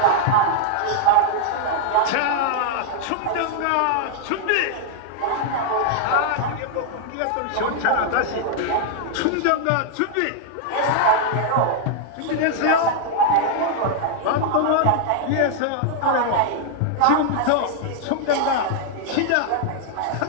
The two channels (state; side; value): different; both; correlation -0.01